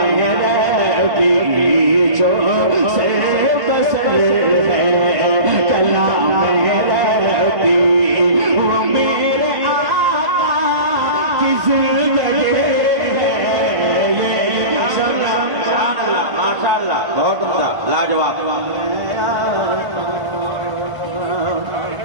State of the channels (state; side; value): late; left; 1.5 ms